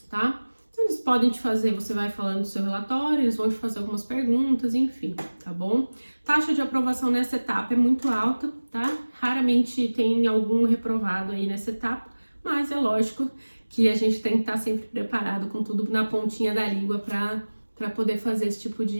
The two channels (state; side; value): inverted; both; correlation -1.00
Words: tá? Eles podem te fazer, você vai falando do seu relatório, eles vão te fazer algumas perguntas, enfim, tá bom? Taxa de aprovação nessa etapa é muito alta, tá? Raramente tem algum reprovado aí nessa etapa, mas é lógico que a gente tem que estar sempre preparado com tudo na pontinha da língua para poder fazer esse tipo